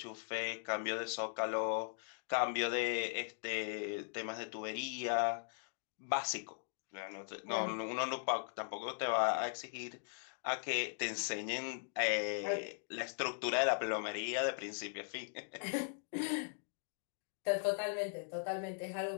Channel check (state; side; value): silent; right; digital silence